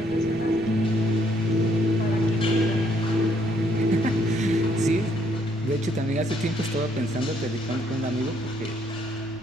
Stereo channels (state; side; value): noise; right; rumble, 20 dB below the sound